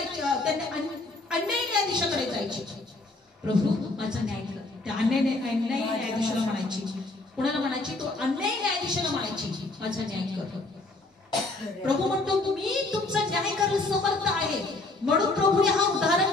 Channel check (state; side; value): quieter; right; 3.1 dB